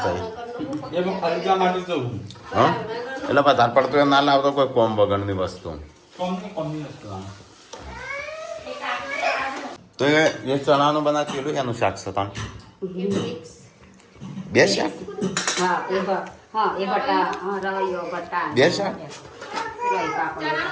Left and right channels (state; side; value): identical; both; correlation 1.00